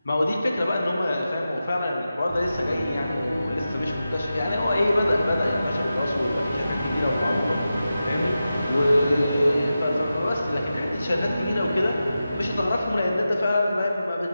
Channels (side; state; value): both; inverted; correlation -0.92